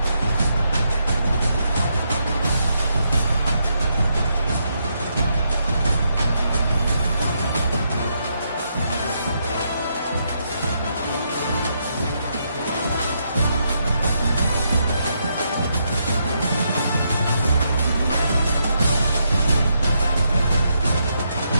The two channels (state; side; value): inverted; both; correlation -0.79